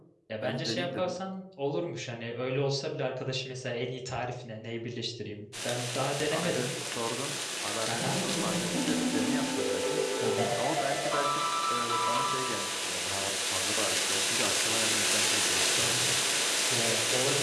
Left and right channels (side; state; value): both; identical; correlation 1.00